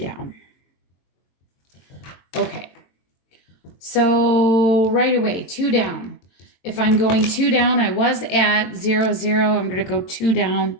Okay. So right away, 2 down. If I'm going 2 down, I was at 0, 0. I'm going to go 2 down.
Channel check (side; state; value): right; late; 22 ms